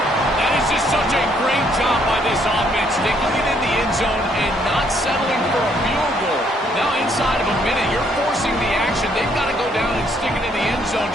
That is just such a great job by this offense, sticking it in the end zone and not settling for a field goal. Now inside of a minute, you're forcing the action. They've got to go down and stick it in the end zone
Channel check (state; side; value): normal; both; correlation 0.68